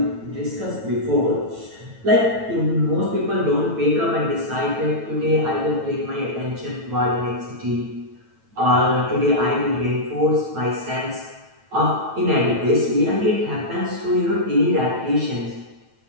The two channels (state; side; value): late; left; 9.1 ms